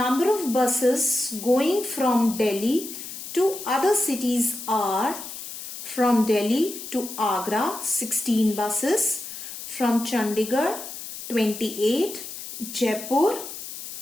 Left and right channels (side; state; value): left; noise; hiss, 10 dB below the sound